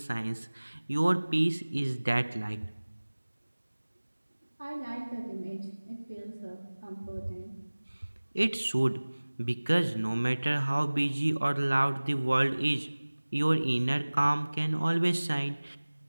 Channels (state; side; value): inverted; both; correlation -1.00